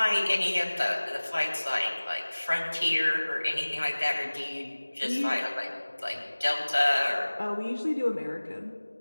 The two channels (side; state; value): both; inverted; correlation -1.00